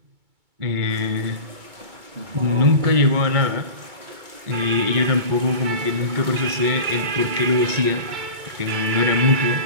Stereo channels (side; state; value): left; late; 2.2 ms